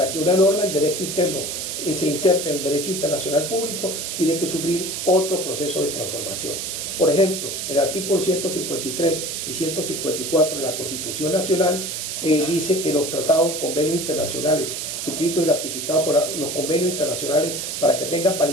que una norma del derecho interno se inserte en el derecho internacional público, tiene que sufrir otro proceso de transformación. Por ejemplo, el artículo 153 y 154 de la Constitución Nacional dice que los tratados, convenios internacionales suscritos y ratificados por los convenios internacionales, para que tengan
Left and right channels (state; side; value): noise; right; hiss, 4 dB below the sound